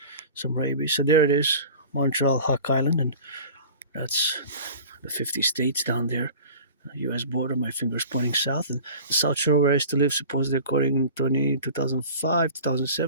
rabies. So there it is, Montreal, Hawk Island, and that's the 50 states down there. U.S. border, my fingers pointing south, and the South Shore where I used to live, supposedly according to 2005,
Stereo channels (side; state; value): both; inverted; correlation -0.40